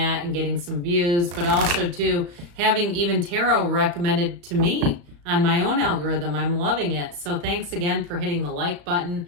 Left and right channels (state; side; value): late; left; 35 ms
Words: and getting some views, but also to having even tarot recommended to me on my own algorithm. I'm loving it. So thanks again for hitting the like button.